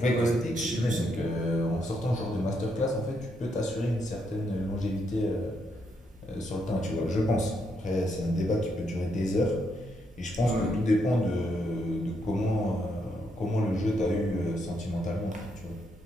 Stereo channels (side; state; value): both; normal; correlation 0.77